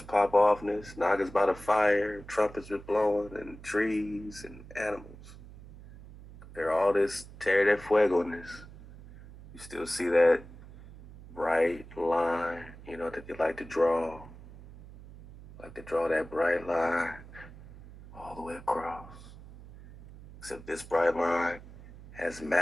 pop offness, Nagas by the fire, trumpets are blowing, and trees and animals. Compare all this Terra de Fuego-ness. You still see that bright line, that they like to draw. Like to draw that bright line all the way across. Except this bright line has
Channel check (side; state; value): right; noise; hum, 17 dB below the sound